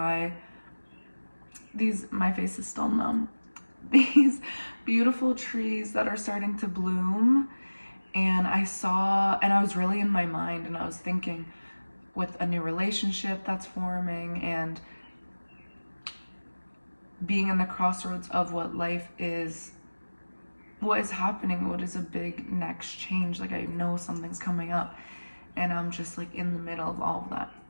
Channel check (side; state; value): both; inverted; correlation -1.00